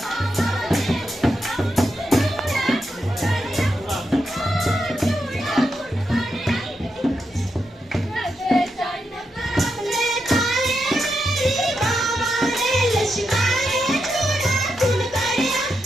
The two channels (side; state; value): both; normal; correlation 0.85